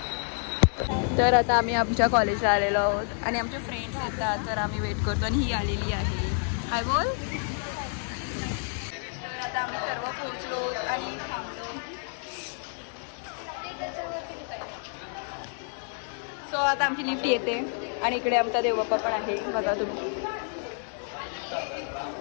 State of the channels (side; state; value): right; silent; 59 dB below the other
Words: तर आता आम्ही आमच्या कॉलेजला आलेलो आहोत आणि आमचे फ्रेंड्स येतात तर आम्ही वेट करतो आणि ही आलेली आहे. हाय बोल. तर आता आम्ही सर्व पोहोचलो आणि थांबलो. सो आता आमची लिफ्ट येते आणि इकडे आमचा देवबाप्पा पण आहे बघा तुम्ही.